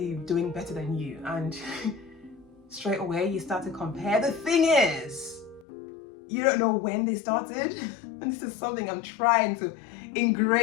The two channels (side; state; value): right; drops out; at 5.7 s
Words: doing better than you, and straight away you start to compare. The thing is, you don't know when they started, and this is something I'm trying to